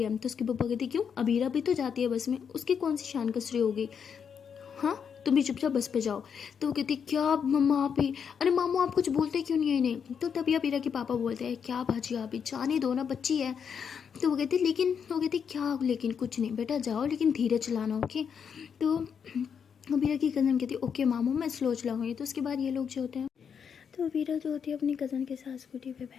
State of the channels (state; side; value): quieter; right; 7.1 dB